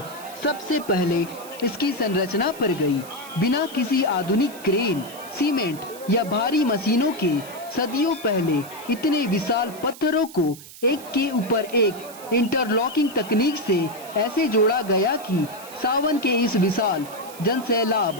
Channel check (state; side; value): noise; right; hiss, 17 dB below the sound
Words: सबसे पहले इसकी संरचना पर गई। बिना किसी आधुनिक क्रेन, सीमेंट या भारी मशीनों के सदियों पहले इतने विशाल पत्थरों को एक के ऊपर एक इंटरलॉकिंग तकनीक से ऐसे जोड़ा गया कि सावन के इस विशाल